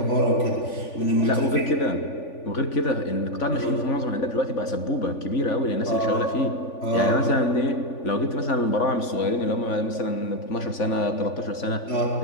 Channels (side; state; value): right; late; 3.5 ms